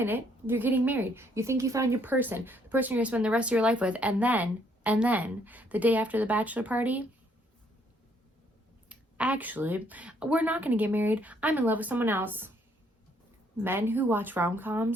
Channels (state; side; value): normal; both; correlation 0.68